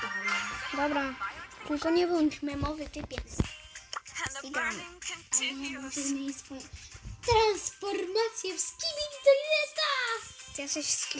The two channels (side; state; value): both; identical; correlation 1.00